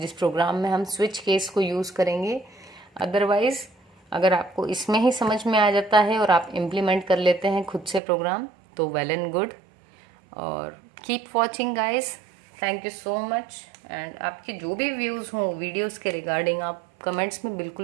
प्रोग्राम में हम स्विच केस को यूज़ करेंगे। अदरवाइज अगर आपको इसमें ही समझ में आ जाता है और आप इम्प्लीमेंट कर लेते हैं खुद से प्रोग्राम, तो वेल एंड गुड। और keep watching guys, thank you so much. And आपके जो भी व्यूज़ हों वीडियोस के रिगार्डिंग आप कमेंट्स में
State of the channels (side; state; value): left; drops out; at 8.0 s